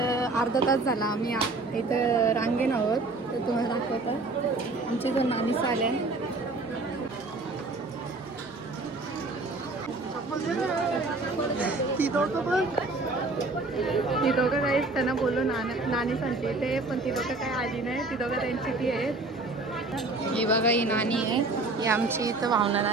अर्धा तास झाला आम्ही इथं रांगेन आहोत. तर तुम्हाला दाखवतं आमची जो नानी आल्या. ती दोघं काहीच त्यांना बोलू नानी सांगते ते, पण ती दोघं काय आली नाही. ती दोघं त्यांची ती आहेत. ही बघा ही नानी आहे, ही आमची इथं भावना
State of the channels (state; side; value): quieter; left; 3.2 dB